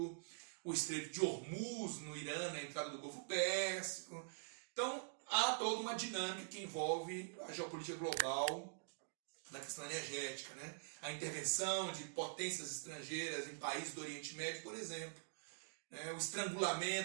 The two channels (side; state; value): left; silent; digital silence